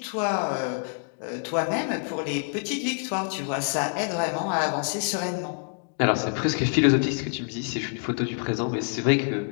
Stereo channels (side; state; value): right; silent; 55 dB below the other